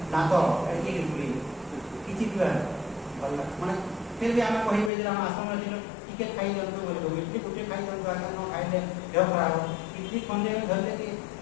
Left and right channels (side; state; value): right; drops out; at 4.9 s